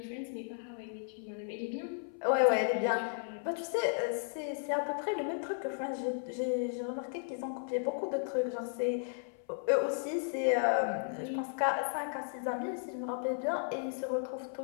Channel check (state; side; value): silent; right; 55 dB below the other